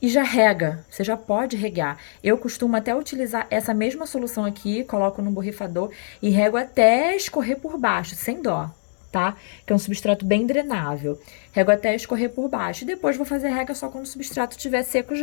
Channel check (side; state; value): right; silent; digital silence